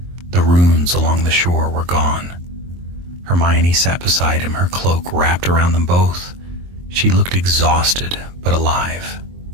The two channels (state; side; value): late; left; 23 ms